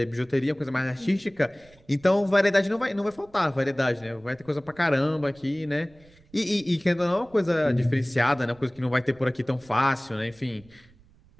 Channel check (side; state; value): right; noise; rumble, 28 dB below the sound